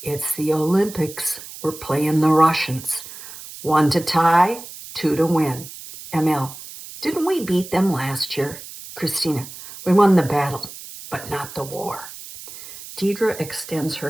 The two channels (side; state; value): right; noise; hiss, 14 dB below the sound